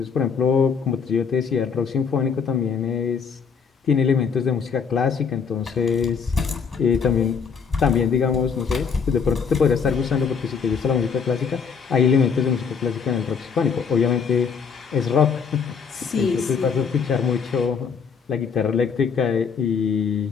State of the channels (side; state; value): right; quieter; 6.3 dB